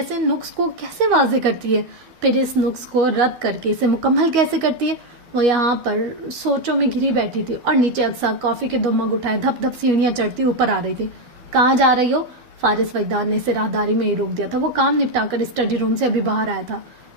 نقص کو کیسے واضح کرتی ہے، پھر اس نقص کو رد کر کے اسے مکمل کیسے کرتی ہے. وہ یہاں پر سوچوں میں گھری بیٹھی تھی اور نیچے اکثر کافی کے 2 مگ اٹھائے دھپ دھپ سیڑھیاں چڑھتی اوپر آ رہی تھی. کہاں جا رہی ہو؟ فارس وجدان نے اسے راہداری میں ہی روک دیا تھا. وہ کام نپٹا کر اسٹڈی روم سے ابھی باہر آیا تھا.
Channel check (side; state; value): left; late; 12 ms